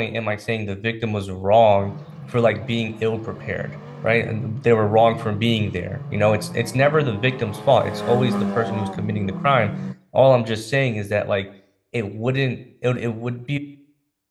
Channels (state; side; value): identical; both; correlation 1.00